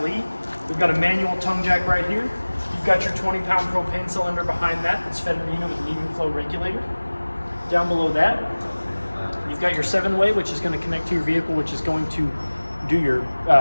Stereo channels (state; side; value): inverted; both; correlation -1.00